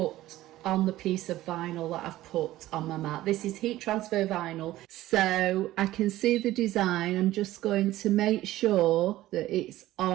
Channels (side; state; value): left; quieter; 15.5 dB